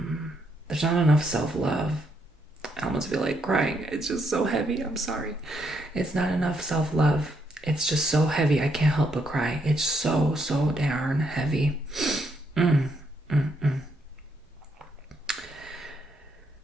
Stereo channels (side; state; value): both; normal; correlation 0.75